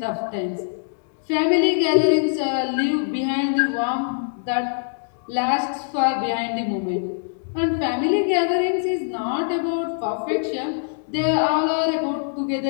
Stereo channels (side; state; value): right; silent; digital silence